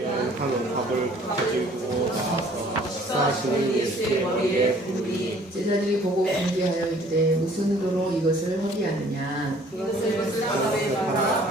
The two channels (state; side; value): normal; both; correlation 0.56